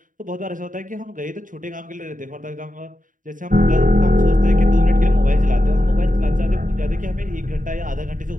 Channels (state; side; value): late; left; 0.38 ms